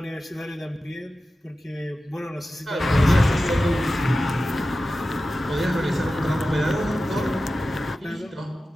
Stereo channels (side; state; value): both; normal; correlation 0.94